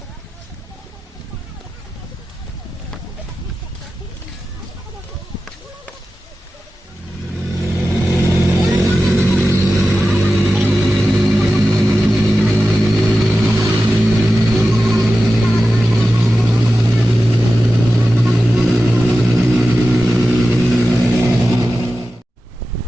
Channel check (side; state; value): both; normal; correlation 0.93